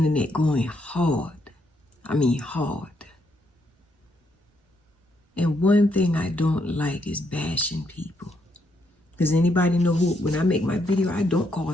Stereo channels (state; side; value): normal; both; correlation 0.76